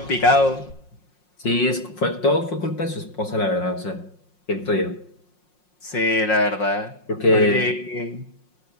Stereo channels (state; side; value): late; right; 5.6 ms